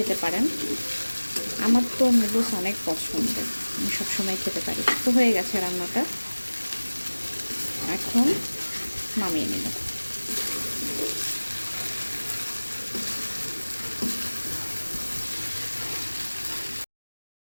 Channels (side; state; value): both; inverted; correlation -1.00